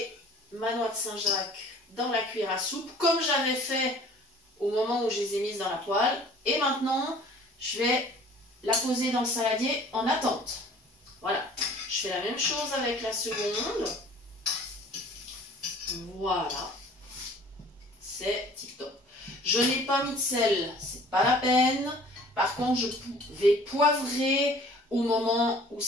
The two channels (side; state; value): both; normal; correlation 0.50